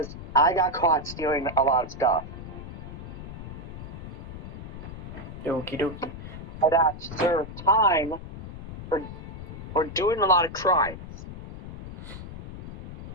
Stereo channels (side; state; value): left; noise; rumble, 10 dB below the sound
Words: I got caught stealing a lot of stuff. Okie dokie. And that served time for doing a lot of crimes.